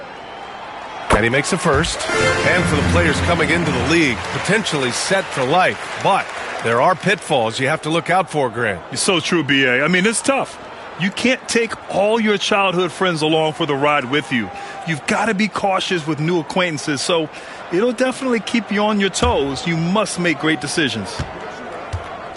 And he makes a first. And for the players coming into the league, potentially set for life. But there are pitfalls you have to look out for, Grant. It's so true, B.A. I mean, it's tough. You can't take all your childhood friends along for the ride with you. You've got to be cautious with new acquaintances, so it'll definitely keep you on your toes. You must make great decisions.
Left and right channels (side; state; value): both; identical; correlation 1.00